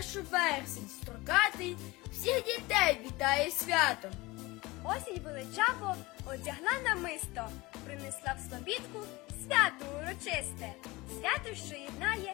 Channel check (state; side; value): quieter; right; 21.9 dB